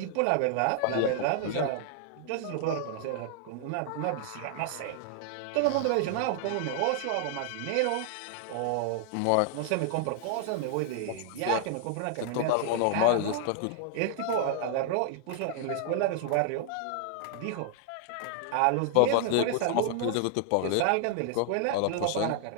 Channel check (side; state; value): both; different; correlation 0.00